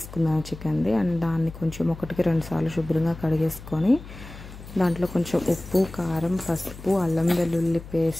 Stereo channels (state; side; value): noise; left; hum, 15 dB below the sound